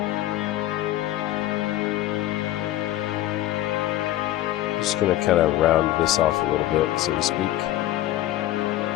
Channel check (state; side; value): quieter; right; 14.6 dB